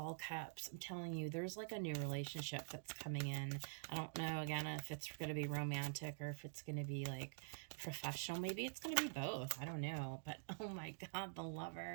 cups. I'm telling you, there's like a new relationship that's coming in. I don't know, again, if it's going to be romantic or if it's going to be like professional. Maybe it's going to be both. I don't know. But oh my God, the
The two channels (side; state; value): left; silent; digital silence